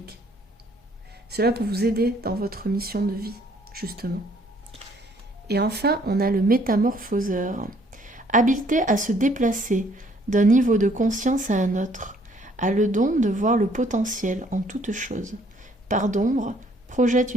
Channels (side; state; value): both; normal; correlation 0.63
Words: Cela peut vous aider dans votre mission de vie, justement. Et enfin, on a le métamorphoseur. Habileté à se déplacer d'un niveau de conscience à un autre, a le don de voir le potentiel en toute chose. Part d'ombre, projette